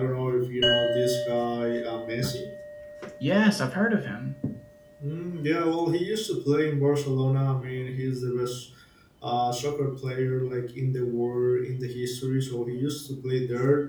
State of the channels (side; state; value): both; identical; correlation 1.00